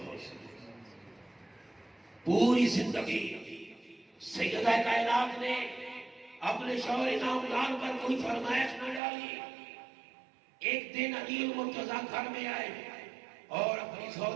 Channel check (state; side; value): drops out; left; at 9.0 s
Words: سے. پوری زندگی سیدہ کائنات نے اپنے شوہر نامدار پر کوئی فرمائش نہ ڈالی. ایک دن علی المرتضیٰ گھر میں آئے اور اپنی